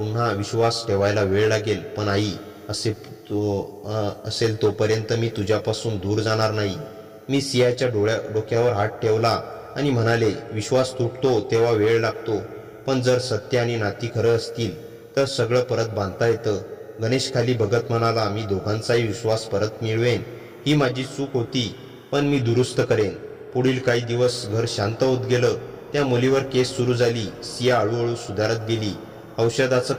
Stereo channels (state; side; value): identical; both; correlation 1.00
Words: विश्वास ठेवायला वेळ लागेल, पण आई असेल तोपर्यंत मी तुझ्यापासून दूर जाणार नाही. मी सियाच्या डोक्यावर हात ठेवला आणि म्हणाले, विश्वास तुटतो तेव्हा वेळ लागतो, पण जर सत्य आणि नाती खरं असतील तर सगळं परत बांधता येतं. गणेश खाली बघत म्हणाला, मी दोघांचाही विश्वास परत मिळवेन. ही माझी चूक होती, पण मी दुरुस्त करेन. पुढील काही दिवस घर शांत होत गेलं. त्या मुलीवर केस सुरू झाली. सिया हळूहळू सुधारत गेली. औषधाचं